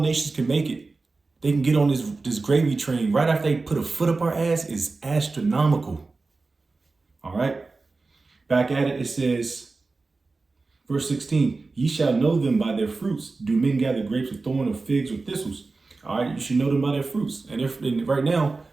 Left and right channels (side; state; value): left; quieter; 3.8 dB